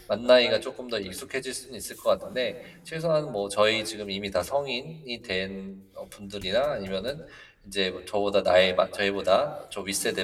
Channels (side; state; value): both; identical; correlation 1.00